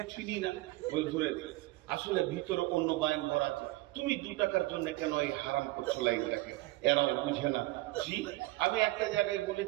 চিনি না, ওই ধরে দিলে। আসলে ভিতরে অন্য বাইন ভরা আছে। তুমি 2 টাকার জন্য কেন এই হারাম করছো লাইন রাখে, এরাও বুঝে না। জি, আমি একটা জায়গায়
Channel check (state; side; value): quieter; left; 19.9 dB